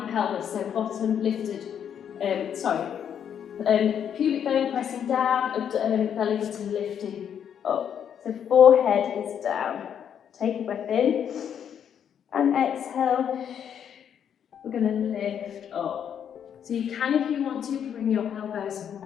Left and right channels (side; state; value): right; quieter; 8.6 dB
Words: so bottom lifted, pubic bone pressing down, belly button lifting up. So forehead is down. Take a breath in and exhale. We're going to lift up. So you can, if you want to, bring your elbows